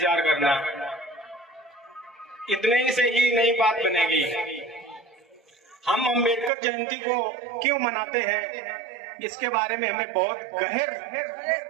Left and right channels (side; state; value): left; drops out; at 6.5 s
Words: करना, इतने से ही नई बात बनेगी। हम अम्बेडकर जयंती को क्यों मनाते हैं, इसके बारे में हमें बहुत